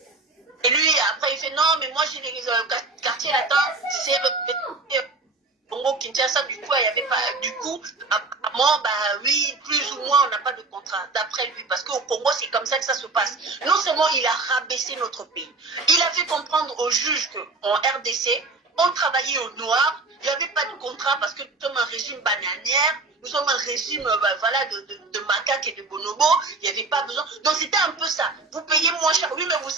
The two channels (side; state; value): left; quieter; 3.6 dB